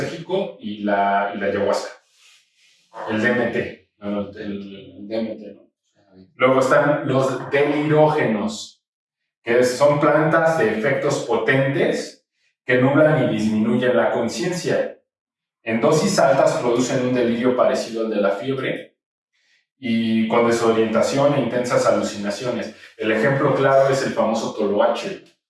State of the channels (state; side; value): identical; both; correlation 1.00